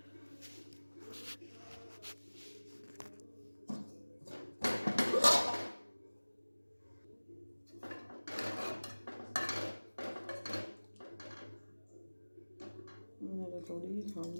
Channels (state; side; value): inverted; both; correlation -1.00